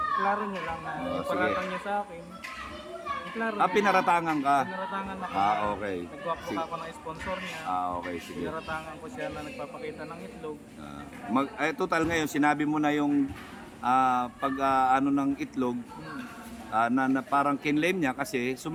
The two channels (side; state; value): both; identical; correlation 1.00